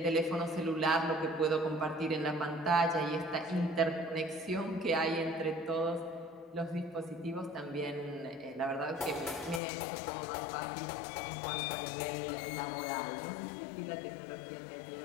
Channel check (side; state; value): right; drops out; at 9.6 s